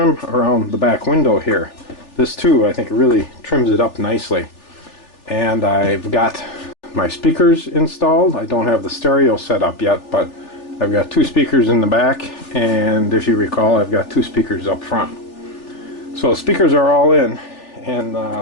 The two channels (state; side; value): late; right; 3.4 ms